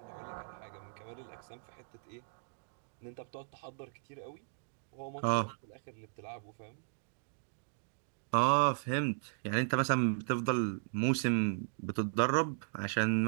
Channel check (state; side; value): silent; left; digital silence